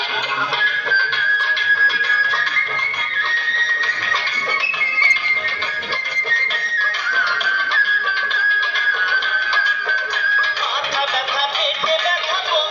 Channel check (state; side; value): identical; both; correlation 1.00